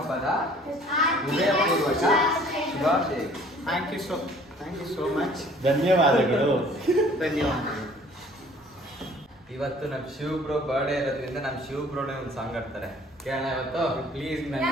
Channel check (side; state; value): both; normal; correlation 0.54